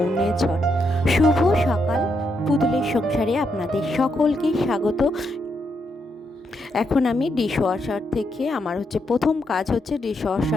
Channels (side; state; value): both; normal; correlation 0.80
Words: শুভ সকাল। পুতুলের সংসারে আপনাদের সকলকে স্বাগত। এখন আমি ডিশওয়াশার থেকে আমার প্রথম কাজ